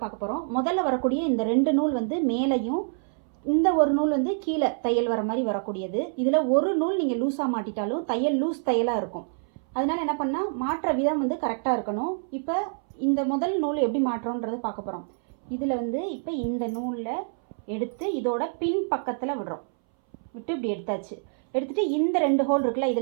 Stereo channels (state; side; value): silent; left; 61 dB below the other